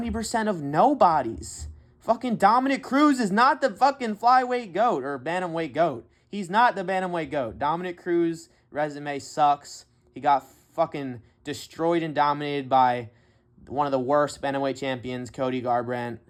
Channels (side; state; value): both; identical; correlation 1.00